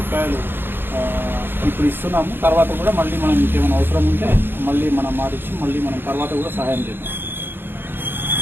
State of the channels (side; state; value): left; late; 0.10 ms